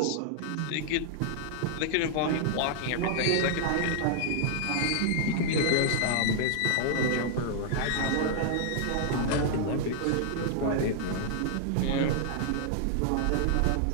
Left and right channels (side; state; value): both; different; correlation 0.00